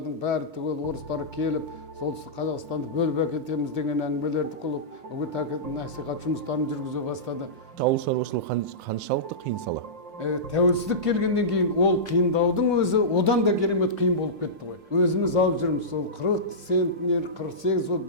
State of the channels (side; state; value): left; late; 5.6 ms